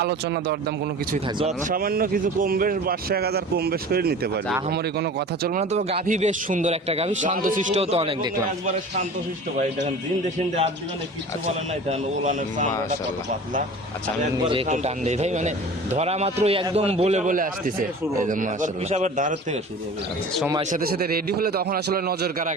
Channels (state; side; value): normal; both; correlation 0.40